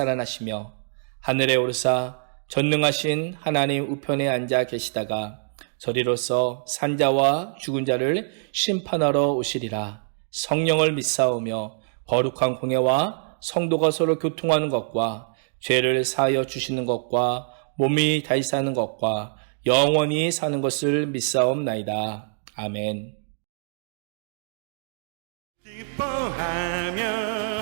하늘에 오르사 전능하신 하나님 우편에 앉아 계시다가 저리로서 산자와 죽은 자를 심판하러 오시리라. 성령을 믿사오며 거룩한 공예와 성도가 서로 교통하는 것과 죄를 사하여 주시는 것과 몸이 다시 사는 것과 영원히 사는 것을 믿사옵나이다. 아멘. 기뻐하며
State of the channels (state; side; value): silent; left; digital silence